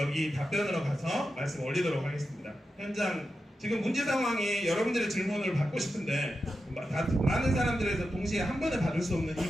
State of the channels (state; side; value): normal; both; correlation 0.90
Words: 답변으로 가서 말씀 올리도록 하겠습니다. 현장 지금 문제 상황이 여러분들의 질문을 받고 싶은데 많은 사람들에서 동시에 한 번에 받을 수 없는 이